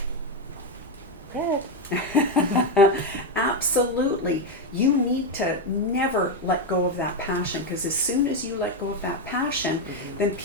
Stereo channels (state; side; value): normal; both; correlation 0.06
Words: Red. Absolutely. You need to never let go of that passion, because as soon as you let go of that passion, then